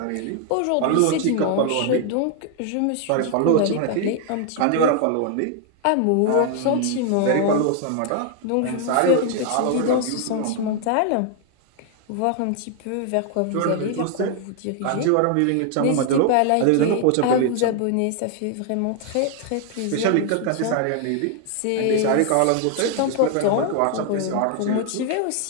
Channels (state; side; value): different; both; correlation 0.00